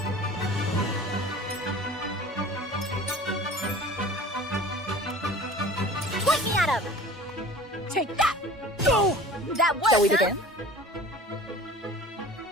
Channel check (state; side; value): normal; both; correlation 0.42